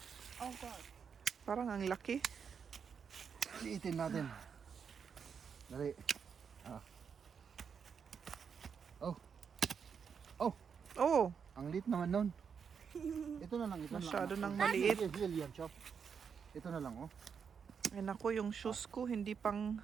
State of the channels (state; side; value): quieter; left; 6.6 dB